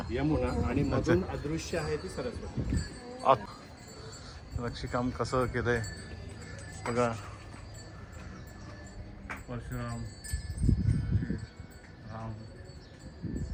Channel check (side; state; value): both; identical; correlation 1.00